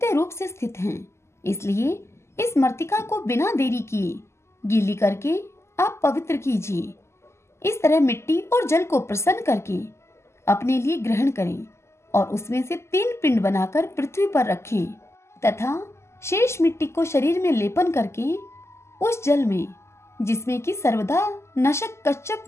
रूप से स्थित हैं, इसलिए इस मृतिका को बिना देरी किए गीली करके आप पवित्र कीजिए। इस तरह मिट्टी और जल को प्रसन्न करके अपने लिए ग्रहण करें और उसमें से 3 पिंड बनाकर पृथ्वी पर रखें तथा शेष मिट्टी को शरीर में लेपन करके उस जल में, जिसमें कि सर्वदा नशक कच्छप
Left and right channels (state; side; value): late; right; 0.13 ms